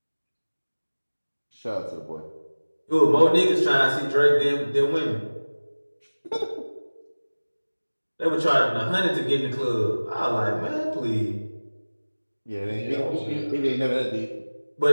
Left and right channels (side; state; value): both; inverted; correlation -1.00